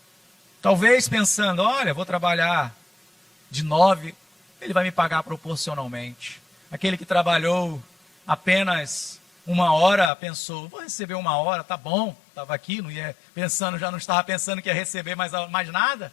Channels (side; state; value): right; drops out; at 10.1 s